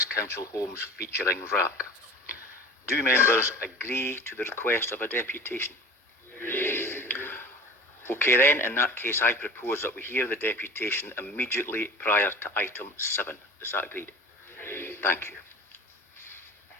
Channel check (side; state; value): both; normal; correlation 0.38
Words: Council homes featuring RAAC. Do members agree to the request of a deputation? Yes. Okay then, in that case I propose that we hear the deputation immediately prior to item 7. Is that agreed? Yes. Thank you.